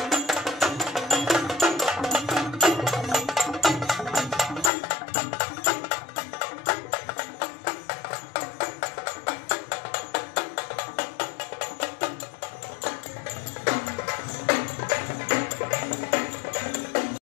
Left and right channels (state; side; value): drops out; right; at 4.7 s